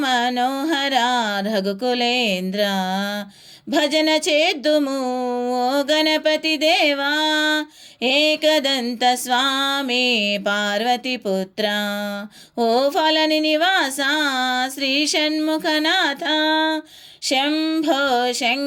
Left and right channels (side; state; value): both; identical; correlation 1.00